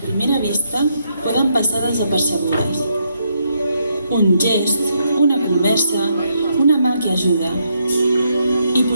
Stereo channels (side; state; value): both; inverted; correlation -0.77